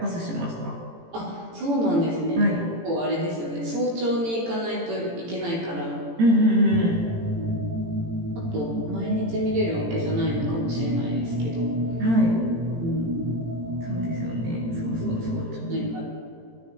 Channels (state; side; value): late; left; 18 ms